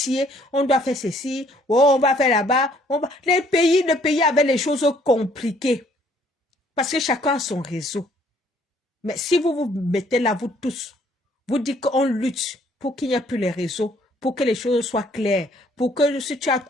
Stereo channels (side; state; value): both; normal; correlation 0.63